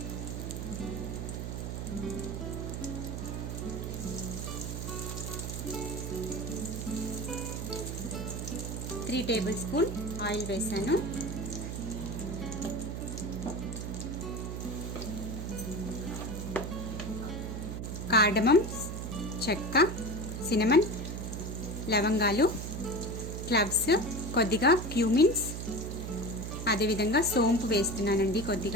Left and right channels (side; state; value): right; noise; hum, 5 dB below the sound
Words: త్రీ టేబుల్ స్పూన్ ఆయిల్ వేసాను. కార్డమం, చెక్క, సినమన్, లవంగాలు, క్లవ్స్, కొద్దిగా క్యూమిన్స్, అదేవిధంగా సోంపు వేస్తున్నానండి.